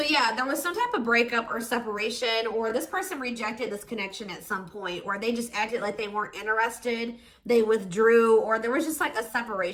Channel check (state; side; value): identical; both; correlation 1.00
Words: yeah, there was some type of breakup or separation, or this person rejected this connection at some point, or they just acted like they weren't interested. They withdrew, or there was just like a